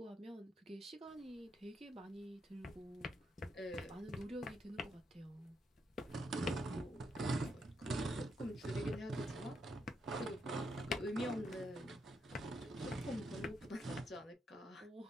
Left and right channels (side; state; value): both; normal; correlation 0.79